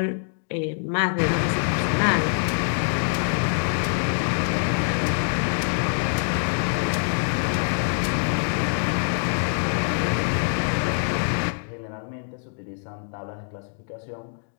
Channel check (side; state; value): right; silent; digital silence